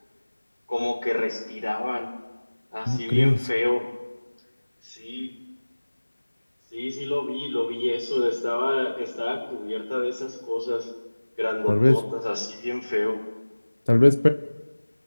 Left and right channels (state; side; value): inverted; both; correlation -1.00